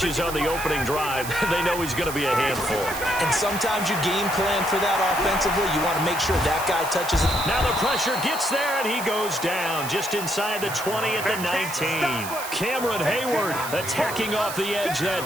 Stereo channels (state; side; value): noise; right; hiss, 9 dB below the sound